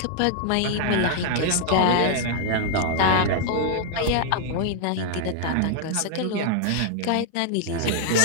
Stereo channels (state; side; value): different; both; correlation 0.00